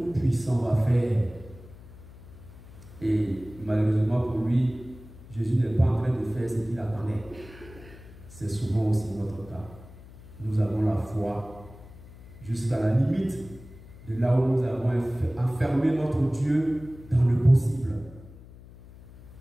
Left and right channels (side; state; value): left; noise; hum, 19 dB below the sound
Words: va faire. Et malheureusement pour lui, Jésus n'est pas en train de faire ce qu'il attendait. C'est souvent aussi notre cas. Nous avons la foi jusqu'à la limite de là où nous avons enfermé notre Dieu dans le possible.